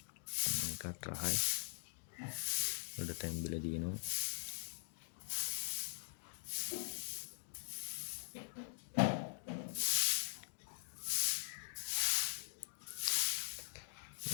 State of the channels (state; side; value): silent; right; digital silence